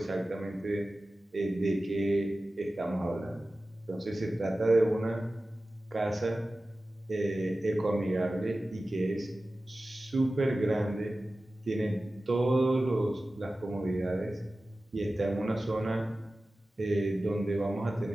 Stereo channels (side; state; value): both; normal; correlation 0.95